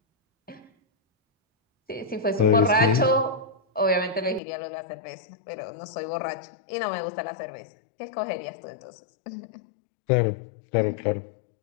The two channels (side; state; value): right; drops out; at 4.4 s